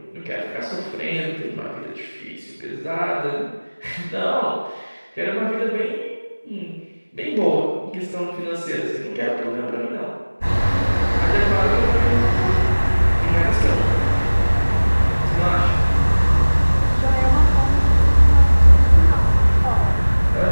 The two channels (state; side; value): inverted; both; correlation -1.00